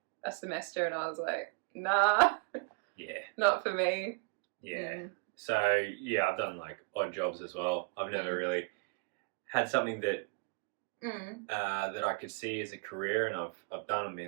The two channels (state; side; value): quieter; left; 34.8 dB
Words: a semester, and I was like, nah, not for me. So I've done like odd jobs as well. I've never really had something that that I could see as a career, and I've done and